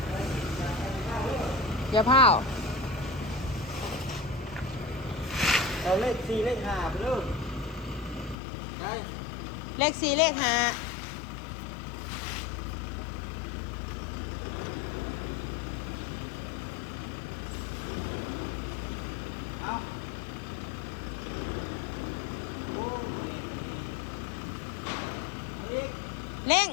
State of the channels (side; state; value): right; drops out; at 8.3 s